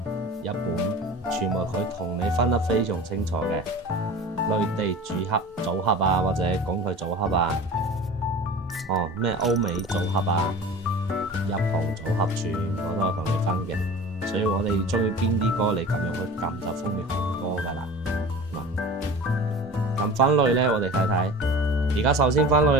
日本，全部佢同你分得非常清楚嘅。內地組合啊，或者港台組合啊，咩歐美組合啊、日韓組合，全部都有同你分嘅。所以我哋中意邊啲歌，你咁樣去撳就方便好多噶啦。咁分類呢，我哋睇睇。而家首先分類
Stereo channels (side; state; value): both; normal; correlation 0.37